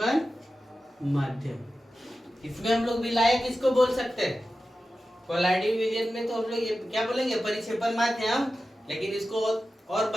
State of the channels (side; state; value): both; normal; correlation 0.93